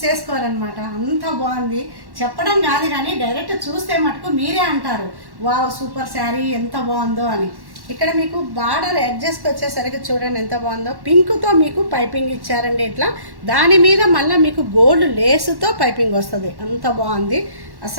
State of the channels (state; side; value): late; left; 1.1 ms